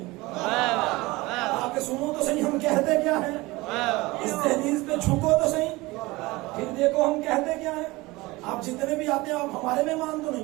आके सुनो तो सही हम कहते क्या है, इस तहरीर पे झुको तो सही, फिर देखो हम कहते क्या है। आप जितने भी आते हैं आप हमारे मेहमान तो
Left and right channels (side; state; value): left; quieter; 21.5 dB